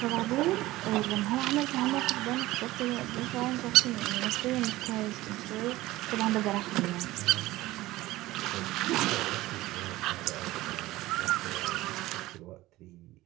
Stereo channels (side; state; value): left; quieter; 17.6 dB